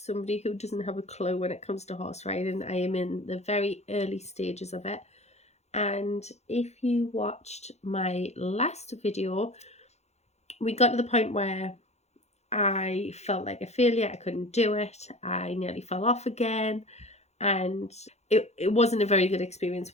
who doesn't have a clue when it comes to horse riding. I am in the very early stages of it, and if you watched my last video, we got to the point where I felt like a failure. I couldn't do it. I nearly fell off again, and it wasn't a very good experience.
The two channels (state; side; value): late; right; 0.32 ms